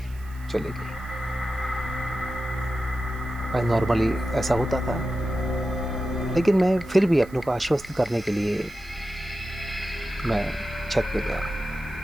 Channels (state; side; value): noise; right; hiss, 25 dB below the sound